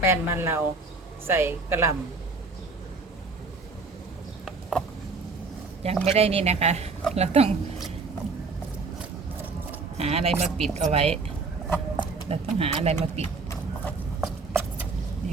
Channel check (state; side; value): quieter; left; 4.1 dB